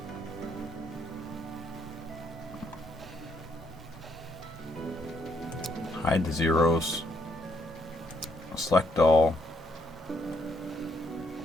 Hide the zeros. Select all.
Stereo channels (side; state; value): both; normal; correlation 0.73